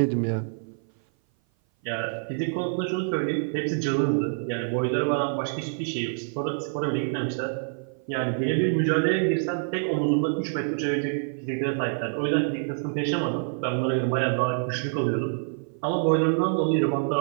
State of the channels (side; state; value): left; silent; 56 dB below the other